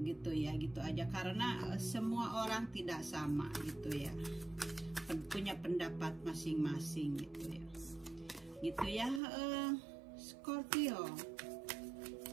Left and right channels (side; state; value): left; drops out; at 9.2 s